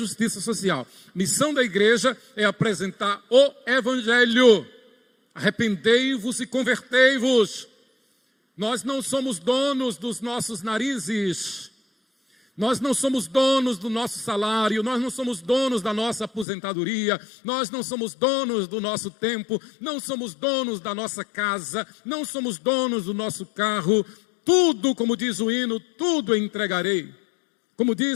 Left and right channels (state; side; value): drops out; right; at 16.4 s